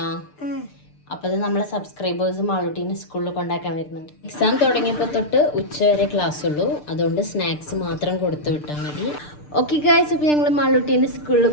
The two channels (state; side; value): late; right; 6.7 ms